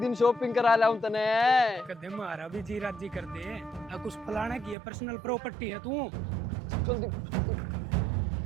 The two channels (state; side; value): drops out; left; at 4.8 s